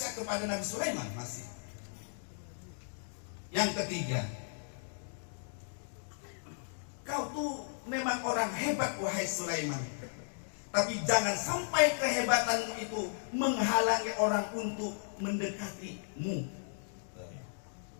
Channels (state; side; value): silent; right; digital silence